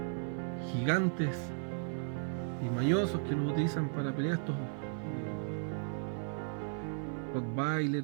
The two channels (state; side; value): silent; left; 54 dB below the other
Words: gigantes y mañosos que los utilizan para pelear, estos